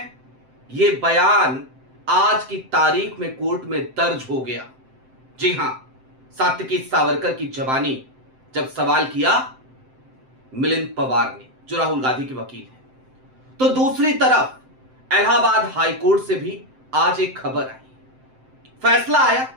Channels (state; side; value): late; left; 7.7 ms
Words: यह बयान आज की तारीख में कोर्ट में दर्ज हो गया। जी हां, सात्विकी सावरकर की जबानी जब सवाल किया मिलिंद पवार ने, जो राहुल गांधी के वकील हैं। तो दूसरी तरफ इलाहाबाद हाई कोर्ट से भी आज एक खबर आई। फैसला आया,